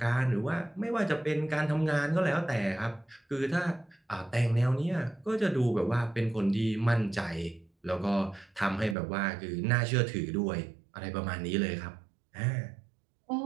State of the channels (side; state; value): left; drops out; at 9.0 s